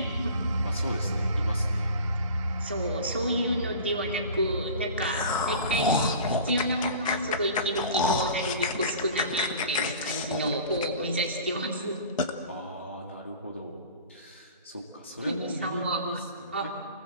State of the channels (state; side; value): inverted; both; correlation -0.41